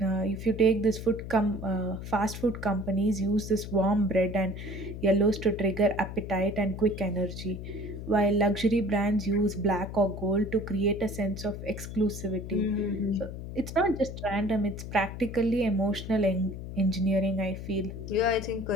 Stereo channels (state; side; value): noise; left; hum, 9 dB below the sound